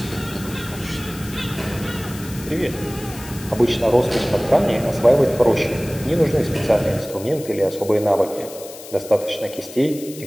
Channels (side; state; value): left; noise; hiss, 16 dB below the sound